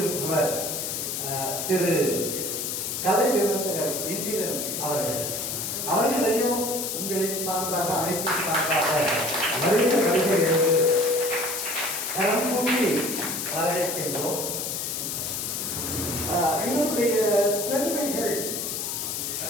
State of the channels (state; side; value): noise; left; hiss, 3 dB below the sound